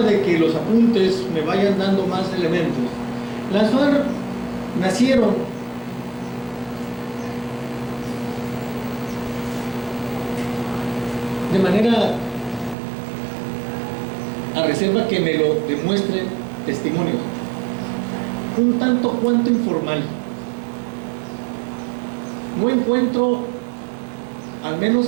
de que los apuntes me vayan dando más elementos, las FARC nacieron de manera, a reserva que me lo demuestren testimonios, un tanto cuanto informal. No encuentro, al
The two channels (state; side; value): drops out; left; at 12.8 s